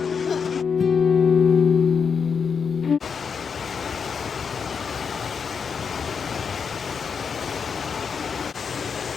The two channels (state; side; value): quieter; right; 6.2 dB